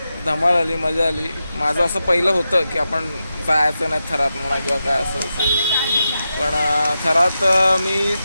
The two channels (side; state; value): both; inverted; correlation -0.89